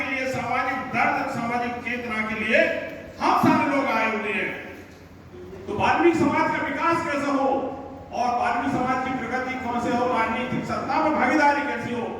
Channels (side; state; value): both; identical; correlation 1.00